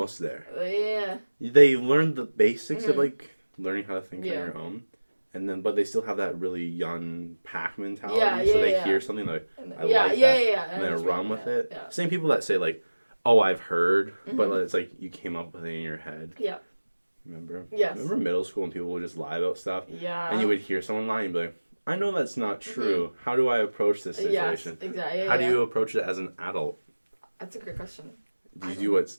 there. Yeah. They learned the basics of learning how to think on your own. And but they still have that really young pack mentality. So they hear something I like that. And then run with it. Yeah. Same people that say oh, I've heard, but it's you came up with it in your head. Yeah. Remember? Yes. Remember middle school when people would just lie about stuff? Yeah. And you would hear someone lie and be like, I know that's not true. How do I approach this situation? Yes, exactly. How do you approach it as an adult? That's a great question. Do you do what's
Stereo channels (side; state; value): both; inverted; correlation -1.00